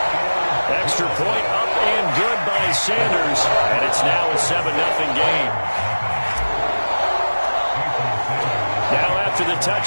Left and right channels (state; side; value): inverted; both; correlation -1.00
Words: Extra point up and good by Sanders, and it's now a 7-0 game. Now after the